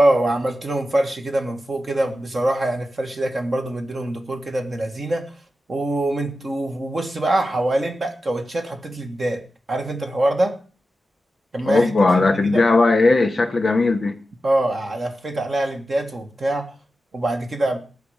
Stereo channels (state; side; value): normal; both; correlation 0.92